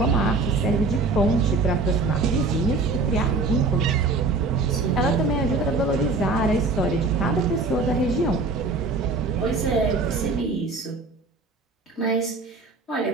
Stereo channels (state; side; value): quieter; left; 3.7 dB